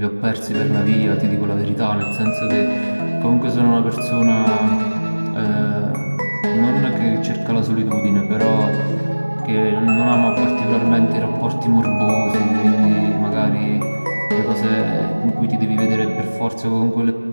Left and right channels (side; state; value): both; inverted; correlation -1.00